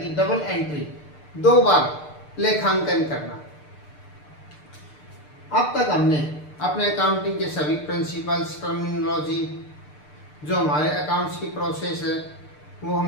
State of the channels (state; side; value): late; right; 6.7 ms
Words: कि डबल एंट्री, दो बार लेखांकन करना। अब तक हमने अपने अकाउंटिंग के सभी प्रिंसिपल्स, टर्मिनोलॉजी, जो हमारे अकाउंट्स की प्रोसेस है वो